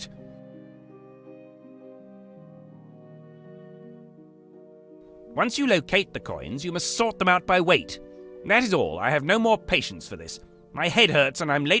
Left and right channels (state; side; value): identical; both; correlation 1.00